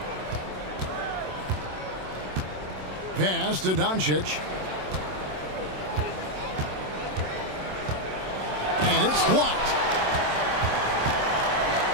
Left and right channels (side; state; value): left; late; 27 ms